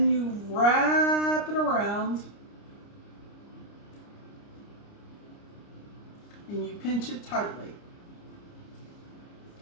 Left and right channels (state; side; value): late; right; 29 ms